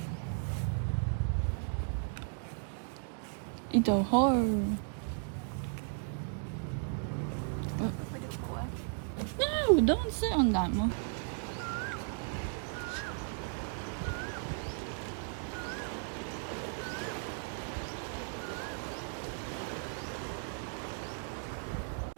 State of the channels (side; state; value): left; silent; 54 dB below the other